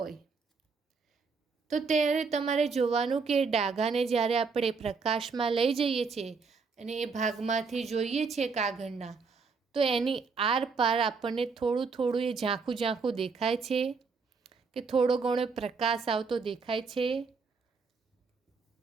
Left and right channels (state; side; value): quieter; left; 4.9 dB